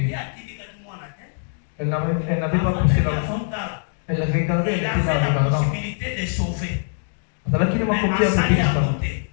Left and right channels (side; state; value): right; silent; digital silence